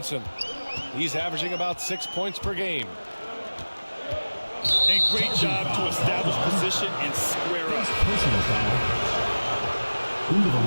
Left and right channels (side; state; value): both; inverted; correlation -1.00